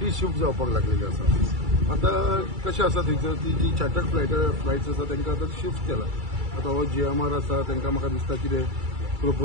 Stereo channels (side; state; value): left; late; 2.3 ms